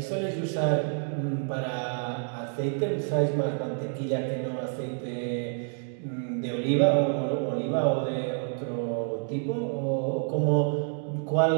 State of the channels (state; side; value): silent; left; 57 dB below the other